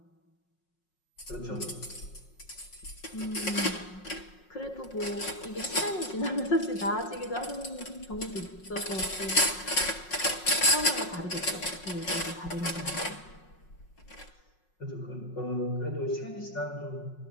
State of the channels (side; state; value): right; late; 5.5 ms